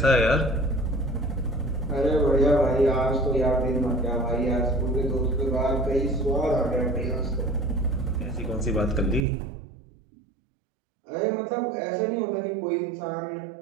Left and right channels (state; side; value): drops out; left; at 9.2 s